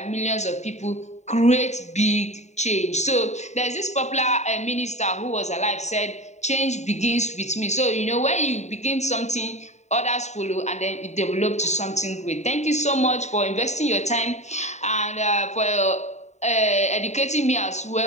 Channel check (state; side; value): late; right; 0.33 ms